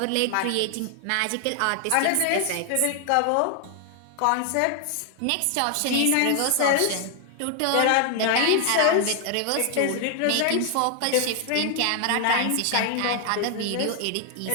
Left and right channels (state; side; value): different; both; correlation 0.00